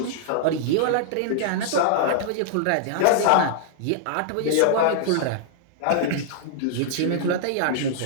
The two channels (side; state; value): both; different; correlation -0.01